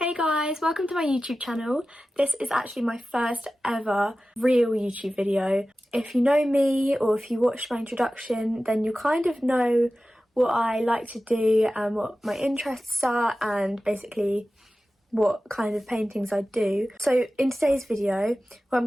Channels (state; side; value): normal; both; correlation 0.95